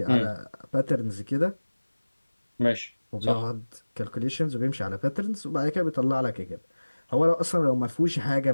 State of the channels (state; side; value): inverted; both; correlation -1.00